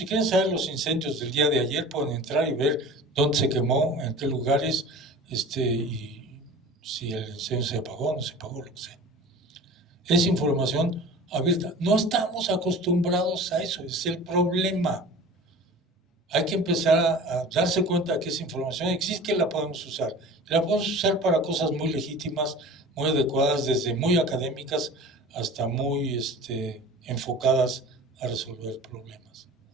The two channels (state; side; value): normal; both; correlation 0.39